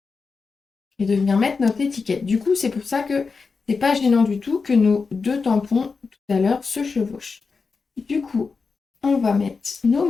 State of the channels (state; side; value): quieter; right; 4.7 dB